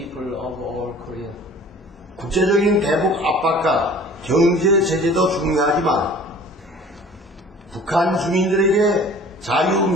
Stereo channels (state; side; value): normal; both; correlation 0.47